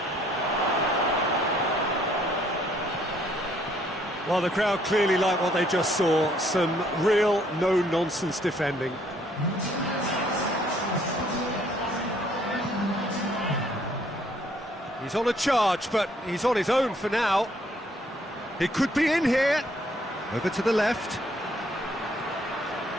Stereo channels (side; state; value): both; normal; correlation 0.65